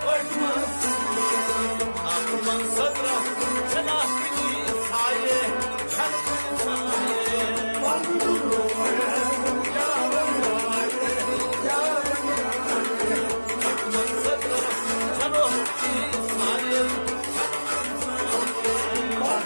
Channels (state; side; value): inverted; both; correlation -1.00